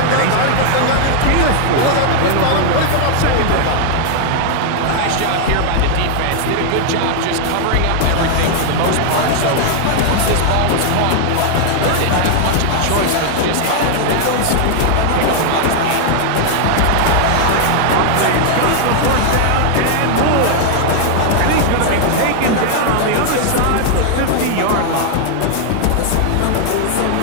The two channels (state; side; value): different; both; correlation -0.01